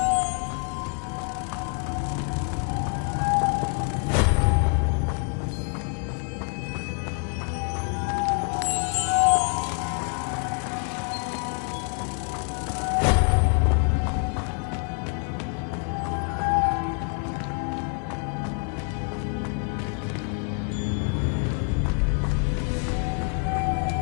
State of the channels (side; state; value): right; quieter; 39.9 dB